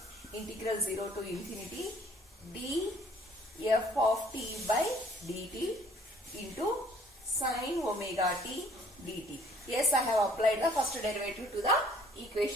integral 0 to infinity df of t by dt into sine omega t dt. Yes, I have applied the first derivative to the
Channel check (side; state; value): both; normal; correlation 0.58